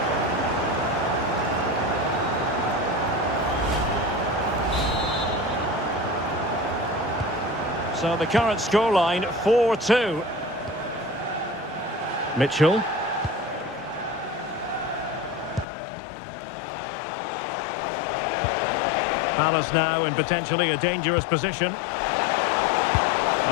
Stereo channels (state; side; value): drops out; right; at 15.7 s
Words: So the current scoreline, 4-2. Mitchell. Palace now in potentially a dangerous position.